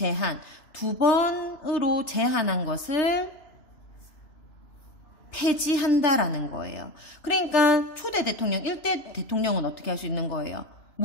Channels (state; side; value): late; right; 3.3 ms